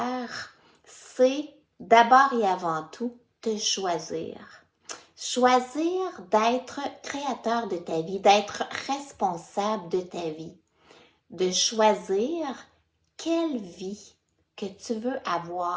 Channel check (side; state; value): both; identical; correlation 1.00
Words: c'est d'abord et avant tout te choisir. Choisir d'être créateur de ta vie, d'être responsable de ta vie, de choisir quelle vie que tu veux